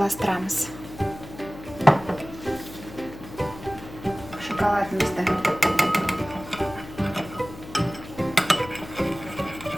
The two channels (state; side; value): noise; left; hum, 15 dB below the sound